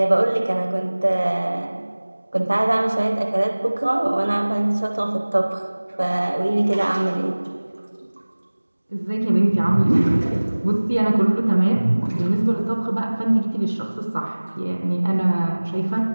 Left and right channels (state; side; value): inverted; both; correlation -1.00